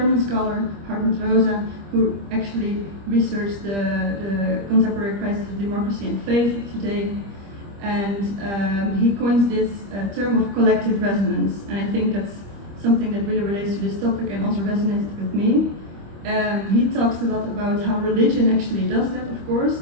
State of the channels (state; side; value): late; left; 25 ms